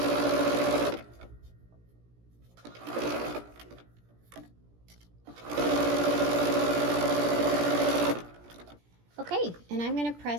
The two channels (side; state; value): left; late; 17 ms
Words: Okay, and I'm going to